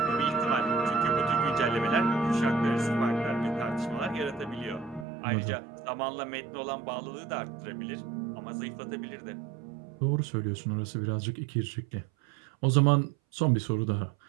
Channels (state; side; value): drops out; left; at 5.1 s